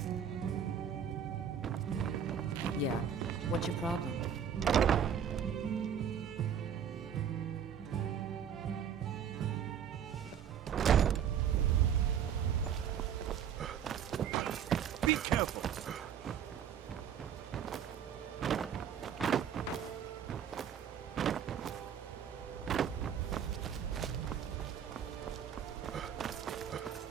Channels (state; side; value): quieter; left; 8.3 dB